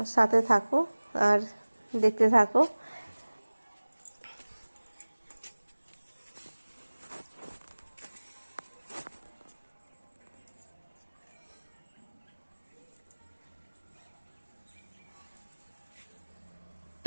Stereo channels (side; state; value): both; inverted; correlation -1.00